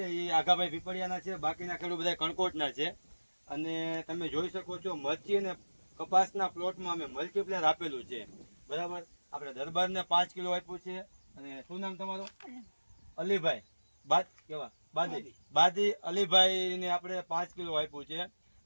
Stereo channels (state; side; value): inverted; both; correlation -1.00